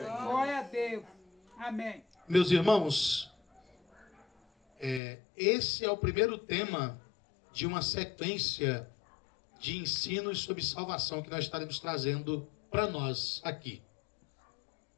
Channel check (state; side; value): drops out; right; at 5.0 s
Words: a Deus. Amém. Meus irmãos, esse é o primeiro tema de uma sequência de ensinos sobre salvação que nós estaremos trazendo para nós aqui.